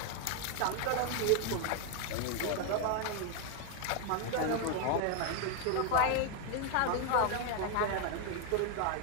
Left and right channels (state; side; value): different; both; correlation 0.01